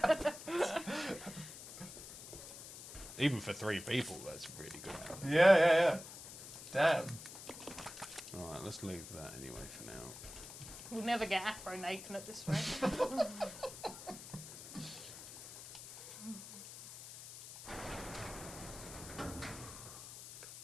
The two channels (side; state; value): left; noise; hiss, 13 dB below the sound